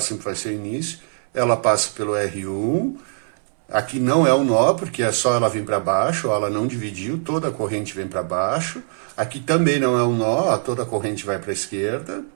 vai ser o início, ela passa pelo R1, aqui não é um nó, porque é só ela vir para baixo, ó, ela não dividiu, toda a corrente vem para baixo, aqui também não é um nó, ó, toda a corrente vai para a esquerda,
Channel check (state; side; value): silent; left; 64 dB below the other